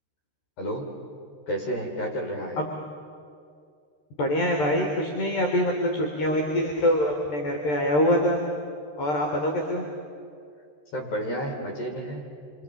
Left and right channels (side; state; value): right; late; 13 ms